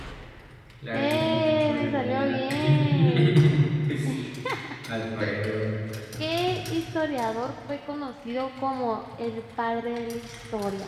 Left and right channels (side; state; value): both; identical; correlation 1.00